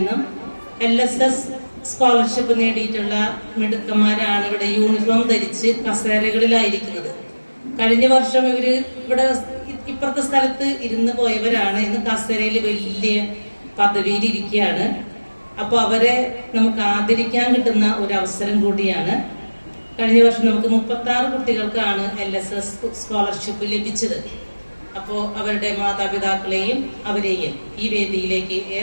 LSS സ്കോളർഷിപ്പ് നേടിയിട്ടുള്ള മിടുക്കന്മാരാണ് ഇവിടെ യൂണിഫോം ധരിച്ച് കസേരകളിലായിരിക്കുന്നത്. കഴിഞ്ഞ വർഷം ഇവര് ഇവിടെ ഇപ്പുറത്തെ സ്ഥലത്ത് ഇരുന്ന് പോയവരാണ്. ഇന്ന് കസേരയിൽ വലിയ പദവിയിൽ ഇരിക്കുകയാണ്. അപ്പൊ അവരെ നമുക്ക് ആദരിക്കാൻ കിട്ടുന്ന ഒരു അവസരം കൂടിയാണ്. കഴിഞ്ഞ വർഷം നമുക്ക് 36 കുട്ടികൾക്കാണ് LSS സ്കോളർഷിപ്പ് ലഭിച്ചത്. അപ്പോൾ അവരുടെ മാതാപിതാക്കളെയും അവരെയും ഈ വേദിയിലേക്ക്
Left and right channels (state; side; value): inverted; both; correlation -1.00